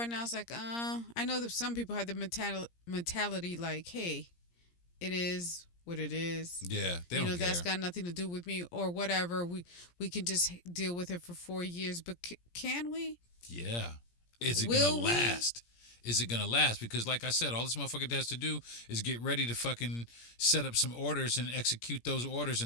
now, it's like, I know that some people have the mentality like, hey, it is what it is. Yeah, they don't care. That's got nothing to do with me or whatever. We can just deal with it for 4 years. But can we? Yeah. Is it going to last? Is it going to last? Because like I said, all this motherfucker has to do is get ready to fucking set up some orders and execute those orders.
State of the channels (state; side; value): late; right; 17 ms